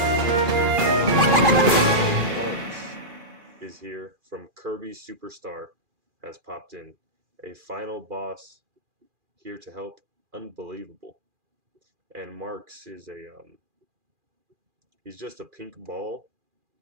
Marks is here from Kirby Superstar has popped in. A final boss here to help. Unbelievable. And Marks is he's just a pink ball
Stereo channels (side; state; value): left; late; 2.4 ms